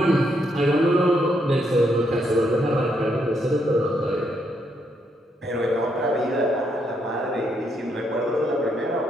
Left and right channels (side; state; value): both; normal; correlation 0.76